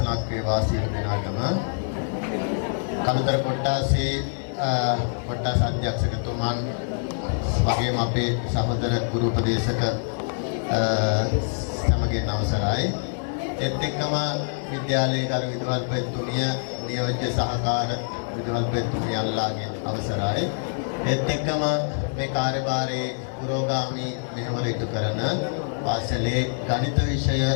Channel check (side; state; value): right; silent; digital silence